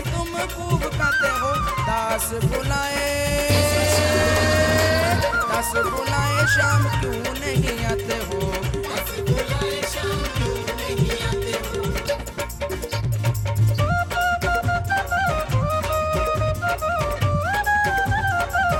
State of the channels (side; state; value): both; identical; correlation 1.00